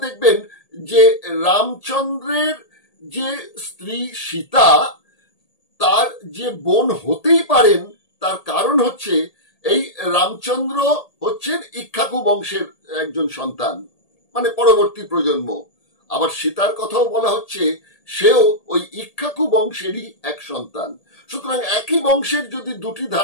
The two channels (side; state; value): right; late; 1.8 ms